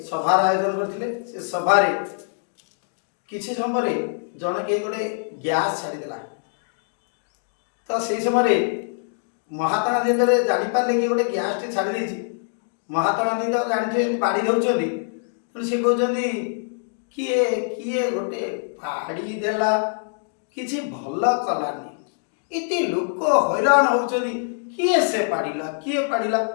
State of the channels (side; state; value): right; silent; digital silence